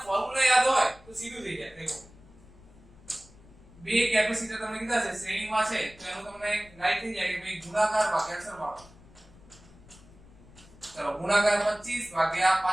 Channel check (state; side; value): noise; left; rumble, 24 dB below the sound